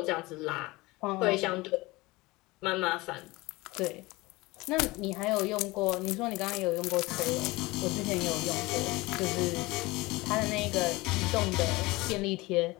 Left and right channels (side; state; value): right; quieter; 21.7 dB